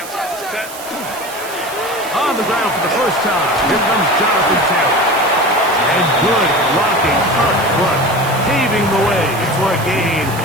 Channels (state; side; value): noise; right; hiss, 14 dB below the sound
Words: Set. On the ground for the first time, here comes Jonathan Taylor. And good blocking up front, paving the way for a gain